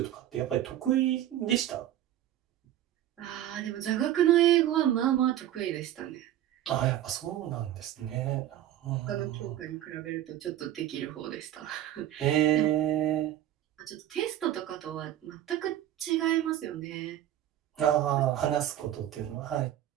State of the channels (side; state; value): left; quieter; 12.4 dB